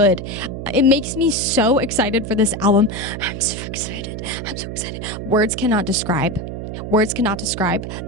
It makes me so excited for this album. I'm so excited. Words cannot describe.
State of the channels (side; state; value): right; noise; hum, 7 dB below the sound